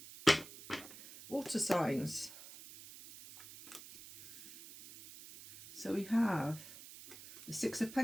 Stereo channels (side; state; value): right; noise; hiss, 16 dB below the sound